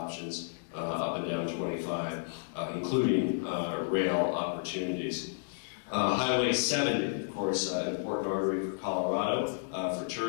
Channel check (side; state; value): right; silent; digital silence